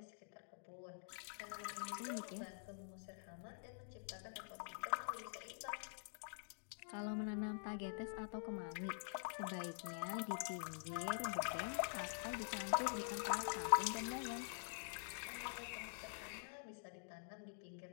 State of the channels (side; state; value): right; silent; digital silence